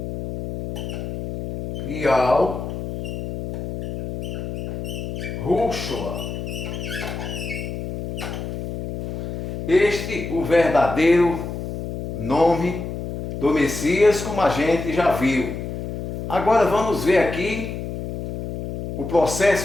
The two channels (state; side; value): noise; left; hum, 7 dB below the sound